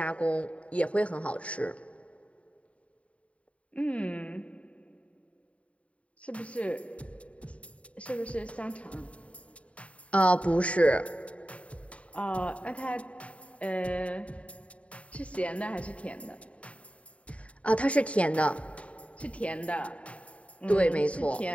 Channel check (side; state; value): right; late; 0.064 ms